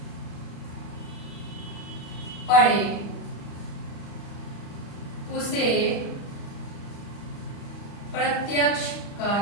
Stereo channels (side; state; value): right; late; 35 ms